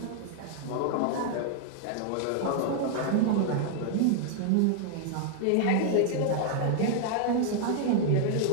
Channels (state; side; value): different; both; correlation 0.00